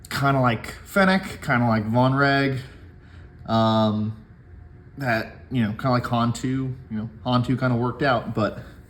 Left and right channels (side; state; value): both; identical; correlation 1.00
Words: of like Fennec, kind of like Von Reg. That, kind of like Han2, Han2 kind of worked out, but